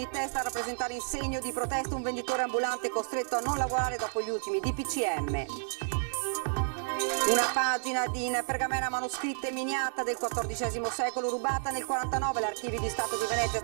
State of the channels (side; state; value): left; silent; digital silence